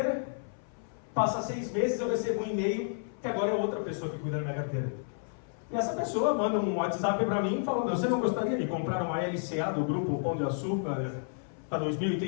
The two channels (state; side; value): silent; right; 57 dB below the other